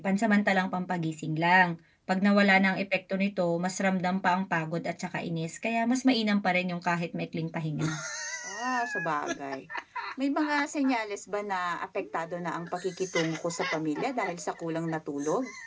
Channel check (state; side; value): identical; both; correlation 1.00